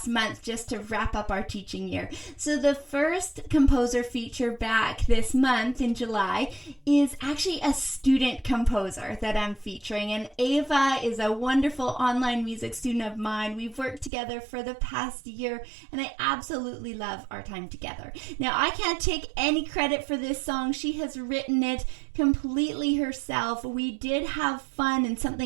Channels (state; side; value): drops out; left; at 14.1 s